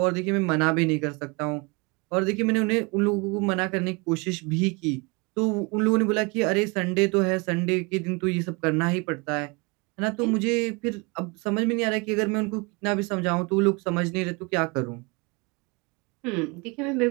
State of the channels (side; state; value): left; quieter; 28.3 dB